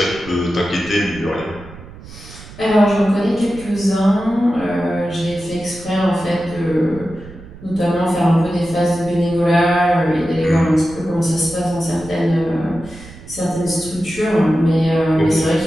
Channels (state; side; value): noise; right; rumble, 17 dB below the sound